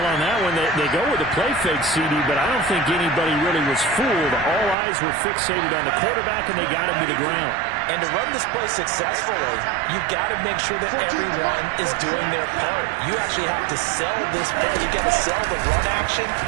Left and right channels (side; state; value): left; drops out; at 4.8 s